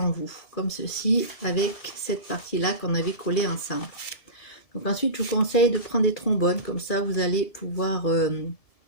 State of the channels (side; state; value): right; late; 1.7 ms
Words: vous, comme ceci, avec cette partie-là qu'on avait collé ensemble. Donc ensuite, je vous conseille de prendre des trombones, comme ça vous allez pouvoir